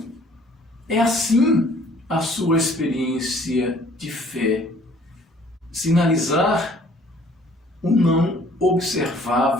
É assim a sua experiência de fé. Sinalizar o não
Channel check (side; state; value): both; normal; correlation 0.56